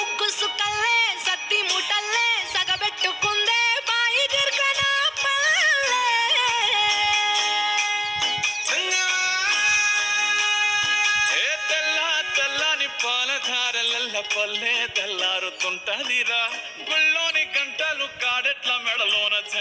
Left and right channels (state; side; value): identical; both; correlation 1.00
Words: సుక్కల్లే సత్తి ముటల్లే సగబెట్టుకుందే బాయి గిర్కన పల్లె తెల్ల తెల్లని పాలధారలల్ల పల్లె తెల్లారుతుంటదిరా గుళ్ళోని గంటలు కాడెట్ల మెడలోన